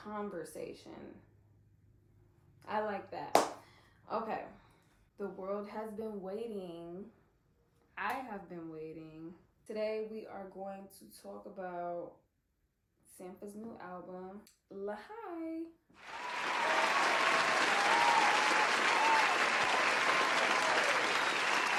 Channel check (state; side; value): identical; both; correlation 1.00